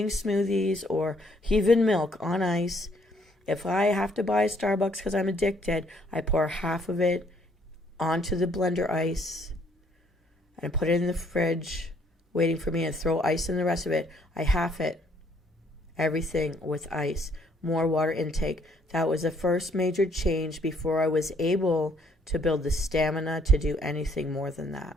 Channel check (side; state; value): both; normal; correlation 0.66